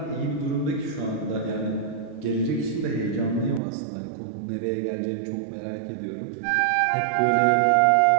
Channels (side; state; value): left; drops out; at 3.6 s